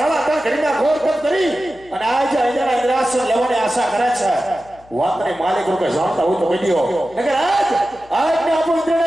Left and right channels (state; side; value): noise; left; hum, 27 dB below the sound